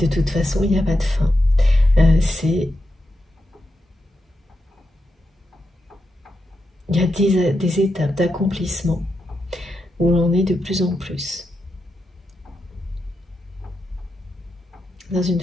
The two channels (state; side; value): normal; both; correlation 0.86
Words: toute façon, il n'y a pas de fin. Il y a des étapes d'accomplissement où l'on est de plus en plus dans une